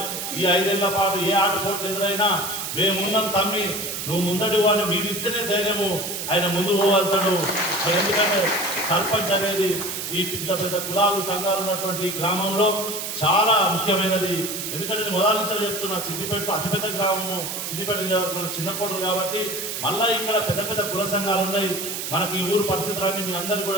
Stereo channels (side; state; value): right; noise; hiss, 5 dB below the sound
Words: ఈ 5 ఏళ్ల పాటు ఏ ఆటపోట్లు ఎదురైనా మేమున్నాం తమ్మి, నువ్వు ముందడి వాడిని మీరు ఇస్తేనే ధైర్యము ఆయన ముందు పోగలుగుతాడు. ఎందుకంటే సర్పంచ్ అనేది ఈ పెద్ద కులాలు సంఘాలు ఉన్నటువంటి గ్రామంలో చాలా ముఖ్యమైనది. ఎందుకంటే నేను మొదటి నుంచి చెప్తున్నా, సిద్దిపేట అతిపెద్ద గ్రామము, సిద్దిపేట చిన్న కోటలు కాబట్టి మళ్ళా ఇక్కడ పెద్ద కుల సంఘాలు ఉన్నాయి. మనకి ఈ ఊరు పరిస్థితులన్నీ మీ అందరికీ